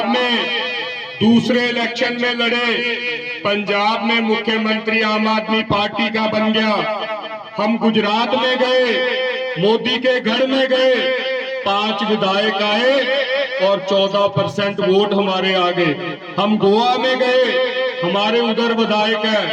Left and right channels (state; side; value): identical; both; correlation 1.00